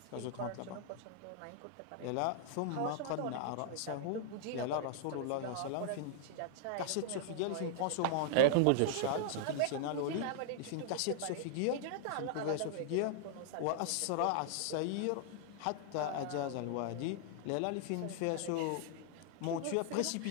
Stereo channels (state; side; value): different; both; correlation -0.01